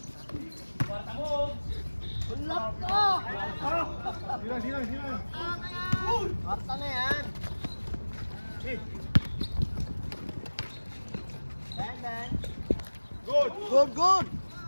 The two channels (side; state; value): both; inverted; correlation -1.00